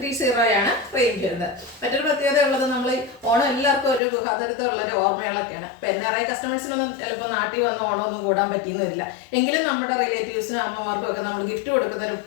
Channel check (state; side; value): drops out; right; at 4.0 s